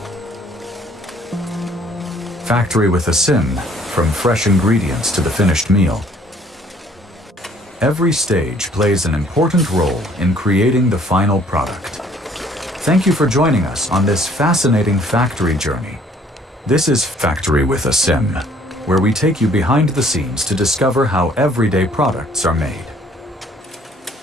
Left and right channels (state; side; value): normal; both; correlation 0.59